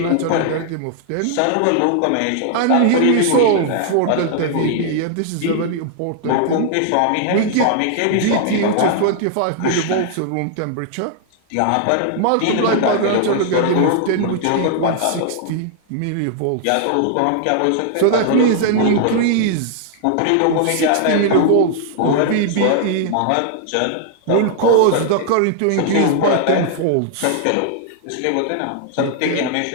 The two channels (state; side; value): different; both; correlation -0.01